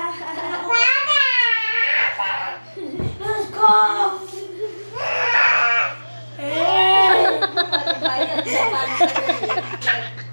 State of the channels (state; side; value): inverted; both; correlation -1.00